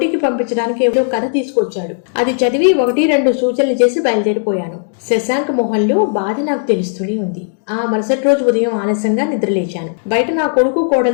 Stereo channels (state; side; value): silent; right; digital silence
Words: పంపించడానికి ఏదో కథ తీసుకొచ్చాడు. అది చదివి 1-2 సూచనలు చేసి బయలుదేరిపోయాను. శశాంక్ మొహంలో బాధ నాకు తెలుస్తూనే ఉంది. ఆ మరుసటి రోజు ఉదయం ఆలస్యంగా నిద్రలేచాను. బయట నా కొడుకు